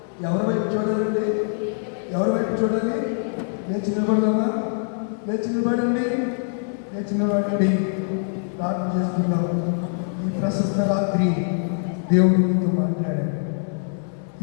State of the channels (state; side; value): silent; right; 62 dB below the other